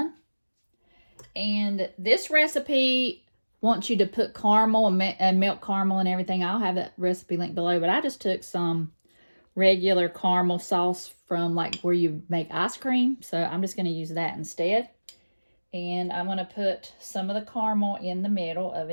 And this recipe wants you to put caramel and milk caramel and everything. I'll have that recipe linked below, but I just took some regular caramel sauce from like where you make ice cream. So I'm just going to use that instead. And I'm going to put some of the caramel in the middle of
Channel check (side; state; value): both; inverted; correlation -1.00